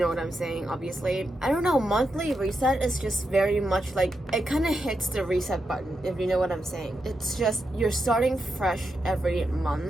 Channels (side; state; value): both; normal; correlation 0.86